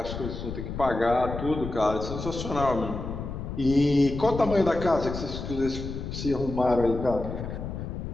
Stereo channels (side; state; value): left; noise; rumble, 7 dB below the sound